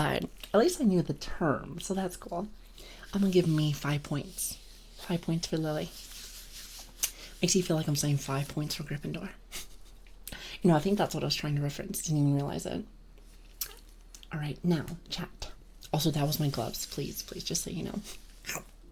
at least I knew the term, so that's cool. I'm gonna give me 5 points. 5 points for Lili. Makes you feel like I'm saying 5 points for Gryffindor. You know, I think that's what I was trying to reference. Didn't even realize it. Alright, now, chat. Also, that was my gloves. Please, just so you know.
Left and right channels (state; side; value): identical; both; correlation 1.00